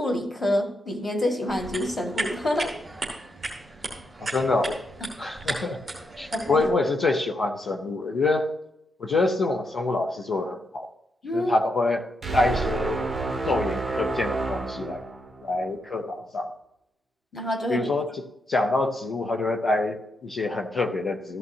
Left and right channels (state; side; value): normal; both; correlation 0.81